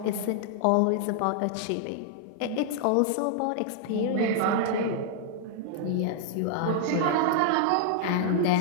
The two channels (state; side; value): different; both; correlation -0.01